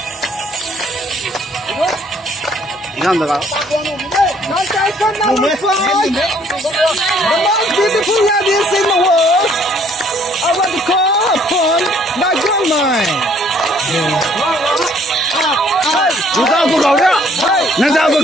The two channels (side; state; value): both; normal; correlation 0.62